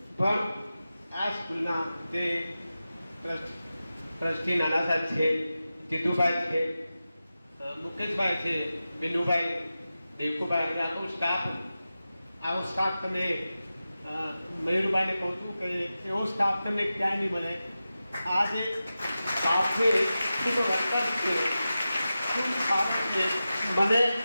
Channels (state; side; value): inverted; both; correlation -0.93